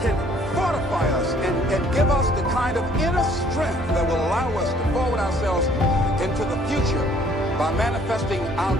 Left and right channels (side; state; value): both; normal; correlation 0.60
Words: fortify us and give us the kind of inner strength that will allow us to forward ourselves into the future by manifesting our